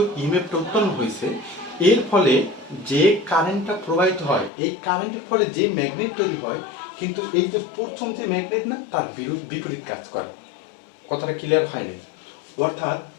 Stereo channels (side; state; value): right; drops out; at 4.5 s